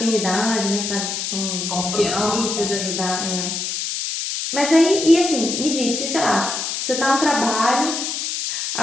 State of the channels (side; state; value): left; noise; hiss, 3 dB below the sound